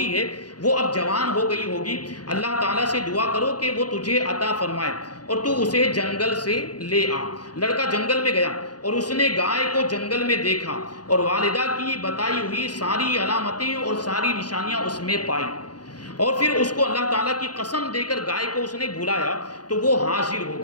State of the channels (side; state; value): right; late; 0.69 ms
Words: ہے، وہ اب جوان ہو گئی ہوگی، اللہ تعالیٰ سے دعا کرو کہ وہ تجھے عطا فرمائے اور تو اسے جنگل سے لے آ۔ لڑکا جنگل میں گیا اور اس نے گائے کو جنگل میں دیکھا اور والدہ کی بتائی ہوئی ساری علامتیں اور ساری نشانیاں اس میں پائی، اور پھر اس کو اللہ تعالیٰ کی قسم دے کر گائے کو اس نے بلایا تو وہ حاضر ہو